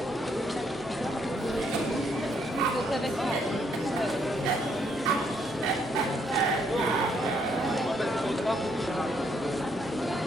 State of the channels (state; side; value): normal; both; correlation 0.72